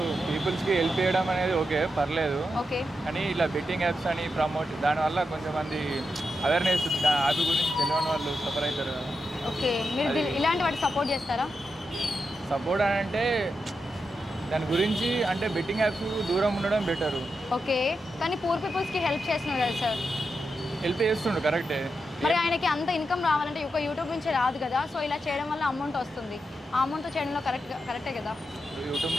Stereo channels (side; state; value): both; normal; correlation 0.87